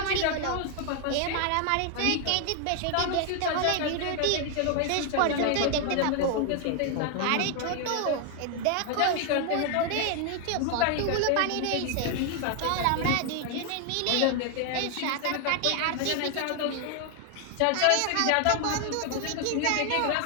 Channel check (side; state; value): both; different; correlation 0.01